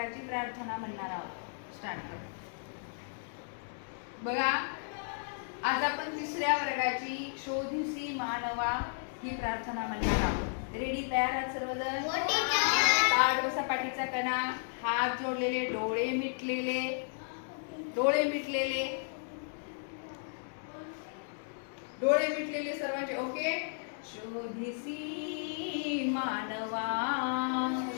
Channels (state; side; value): silent; right; digital silence